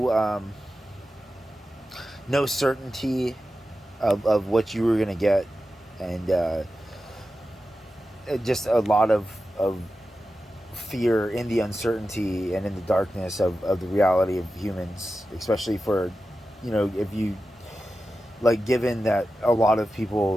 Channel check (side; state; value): both; normal; correlation 0.92